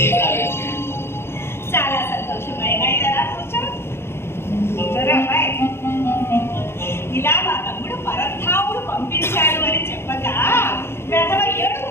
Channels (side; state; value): right; late; 0.12 ms